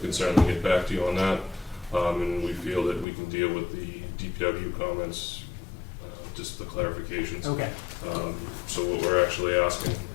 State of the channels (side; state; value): right; drops out; at 3.1 s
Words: certainly get back to you on that. And we feel that we can deal with the DPW comments, just the clarifications. Okay. So what we're actually asking